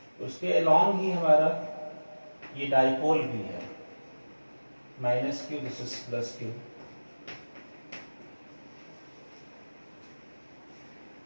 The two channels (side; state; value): both; inverted; correlation -1.00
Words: उसके अलोंग ही हमारा ये डाइपोल भी है, minus Q, this is plus Q.